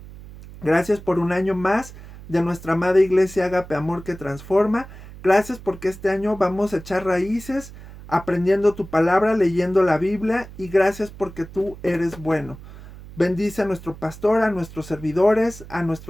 Gracias por un año más de nuestra amada iglesia Agape Amor que transforma. Gracias porque este año vamos a echar raíces aprendiendo tu palabra, leyendo la Biblia y gracias porque tú eres bueno. Bendice a nuestro pastor, a nuestros servidores, a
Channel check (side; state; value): right; noise; hum, 16 dB below the sound